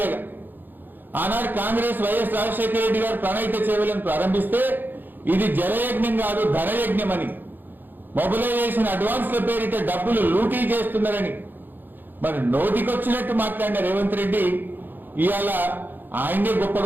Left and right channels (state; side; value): late; left; 0.090 ms